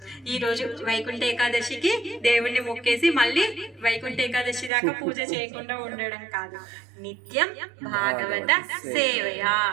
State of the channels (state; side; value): drops out; left; at 4.7 s